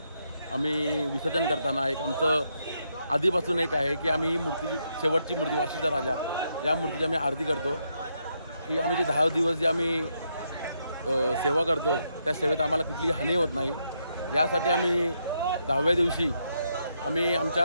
आम्ही विसर्जन करताना एक आमचं आधीपासून एक आहे की आम्ही ही मूर्ती, शेवटची मूर्ती वाशीचा राजा, या मूर्तीची आम्ही आरती करतो. की आम्ही जे 10 दिवस जे आम्ही सेवा करतो त्या सेवेत आम्हाला कुठलीही हानी होत नाही, यासाठी आम्ही 10व्या दिवशी आम्ही आमच्या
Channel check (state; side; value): inverted; both; correlation -0.79